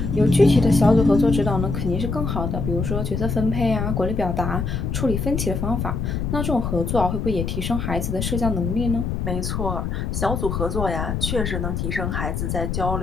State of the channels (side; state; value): left; noise; rumble, 2 dB below the sound